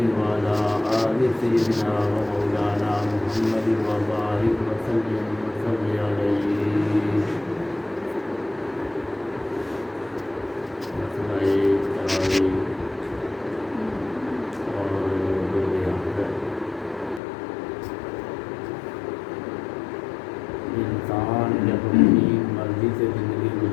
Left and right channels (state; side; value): drops out; right; at 17.2 s